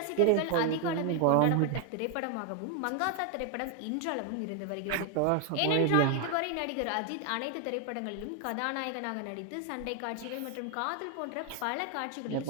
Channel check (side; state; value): both; different; correlation 0.01